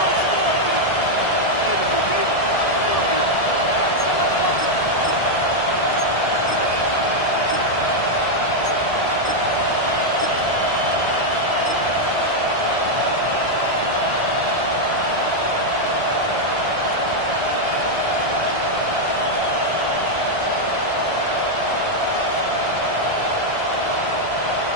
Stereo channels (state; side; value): late; right; 1.7 ms